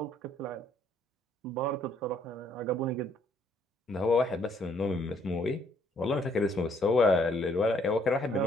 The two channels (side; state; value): both; normal; correlation 0.66